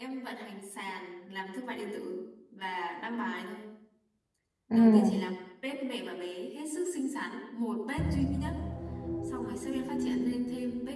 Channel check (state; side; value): identical; both; correlation 1.00